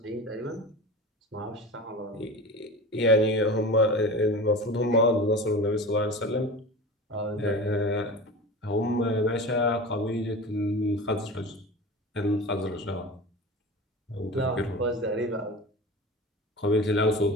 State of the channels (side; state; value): both; normal; correlation 0.32